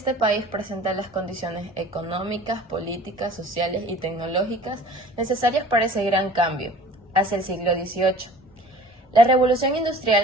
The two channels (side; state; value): both; normal; correlation 0.46